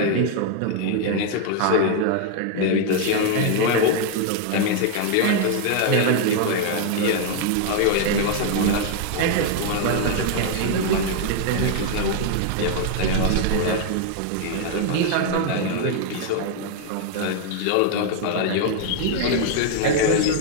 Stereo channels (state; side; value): different; both; correlation 0.00